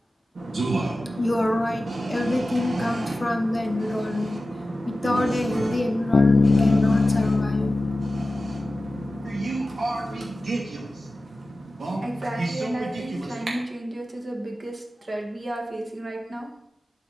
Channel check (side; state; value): both; normal; correlation 0.94